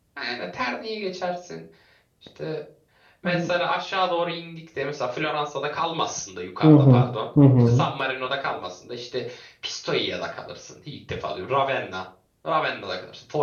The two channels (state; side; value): identical; both; correlation 1.00